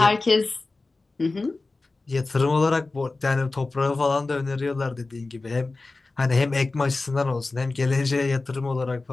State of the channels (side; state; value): right; quieter; 3.4 dB